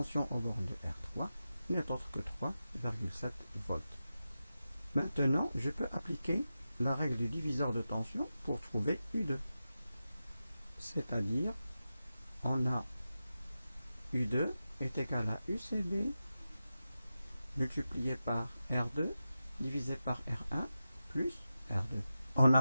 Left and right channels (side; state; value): both; inverted; correlation -0.92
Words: aux bornes de R3, n'est autre que 3,7 volts. Maintenant, je peux appliquer la règle du diviseur de tension pour trouver U2. C'est-à-dire, on a U2 est égal à UCB multiplié par R2 divisé par R1 plus R2. En